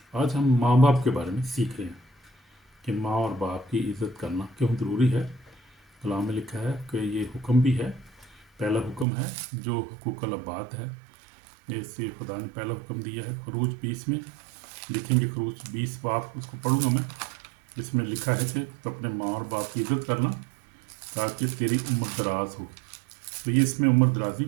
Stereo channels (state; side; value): drops out; left; at 9.1 s